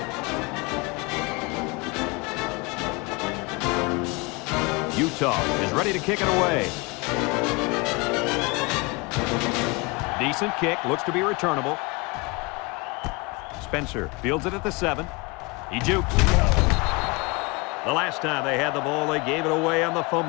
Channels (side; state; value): right; quieter; 26.8 dB